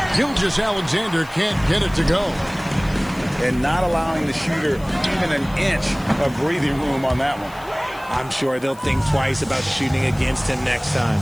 Gilgeous-Alexander can't get it to go. And not allowing the shooter even an inch of breathing room on that one. I'm sure they'll think twice about shooting against him next time.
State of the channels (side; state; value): left; noise; hiss, 23 dB below the sound